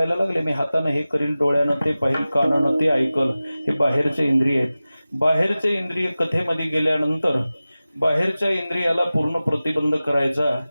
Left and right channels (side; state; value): both; inverted; correlation -0.96